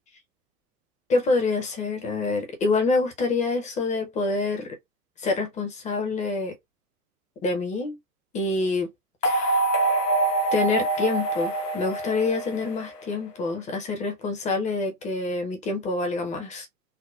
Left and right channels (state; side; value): normal; both; correlation 0.21